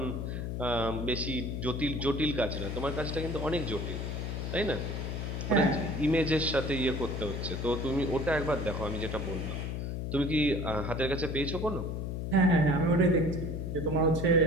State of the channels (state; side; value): noise; left; hum, 3 dB below the sound